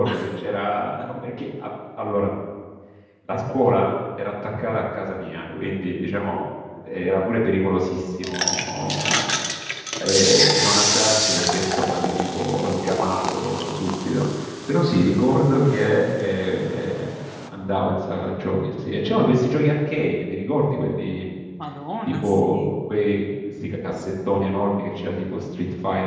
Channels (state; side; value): identical; both; correlation 1.00